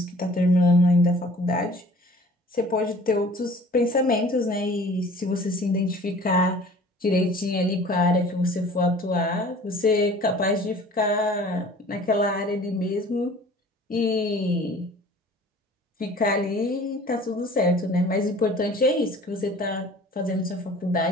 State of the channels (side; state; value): both; normal; correlation 0.48